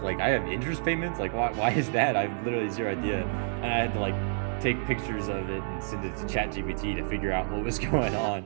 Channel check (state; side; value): silent; left; 59 dB below the other